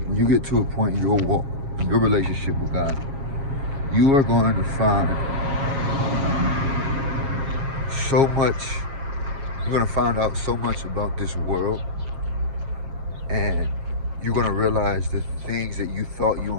in your walk, in your relationship with God, you are going to find so much, you're going to find out so much about this world, and you're going to realize the things that you thought you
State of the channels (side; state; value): left; late; 7.4 ms